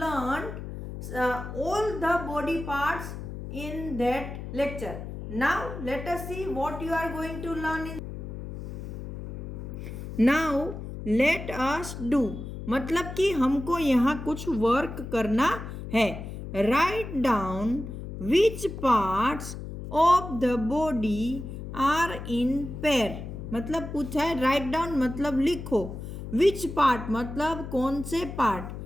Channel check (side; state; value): left; noise; hum, 9 dB below the sound